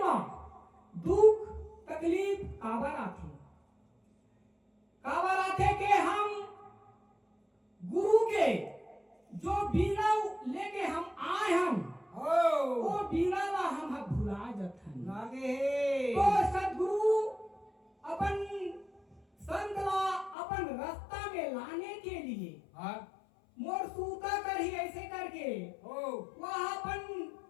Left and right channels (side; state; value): right; drops out; at 20.4 s